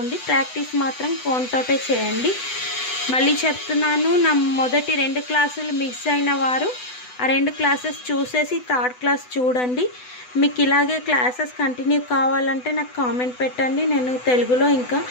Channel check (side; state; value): right; late; 8.0 ms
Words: ప్రాక్టీస్ మాత్రం కోన్తోటే చేయండి. మళ్ళీ చెప్తున్నాను, నా మొదటి 2 క్లాసులు మిస్ అయిన వారు ఆ 2 క్లాసెస్ చూసేసి థర్డ్ క్లాస్ చూడండి. మీకు ఇలాగే క్లాసెస్ కంటిన్యూ కావాలంటే నాకు కామెంట్ పెట్టండి. నేను తెలుగులో ఇంకా